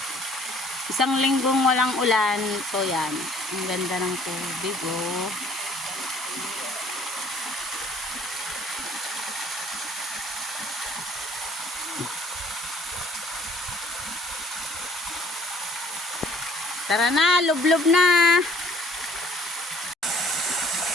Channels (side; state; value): both; normal; correlation 0.55